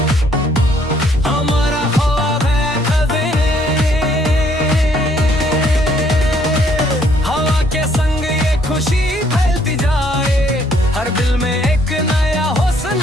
हमारा ख्वाब है कदे, हवा के संग ये खुशी फैलती जाए, हर दिल में एक नया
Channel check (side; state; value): both; normal; correlation 0.66